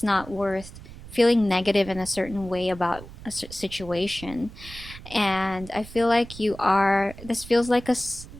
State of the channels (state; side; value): noise; right; rumble, 16 dB below the sound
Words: not worth feeling negative in a certain way about a situation. And I feel like this feels like a